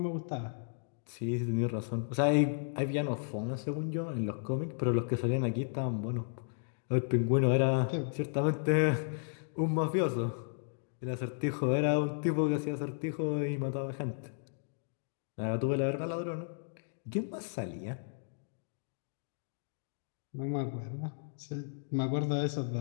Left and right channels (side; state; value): right; silent; digital silence